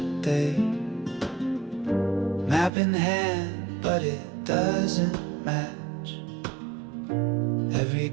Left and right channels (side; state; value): left; drops out; at 2.7 s